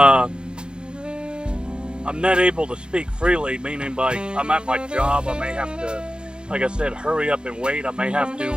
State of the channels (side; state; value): left; late; 0.050 ms